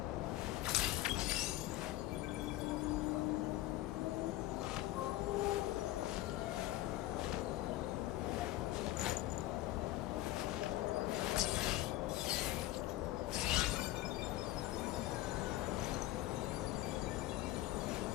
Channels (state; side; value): quieter; right; 16.0 dB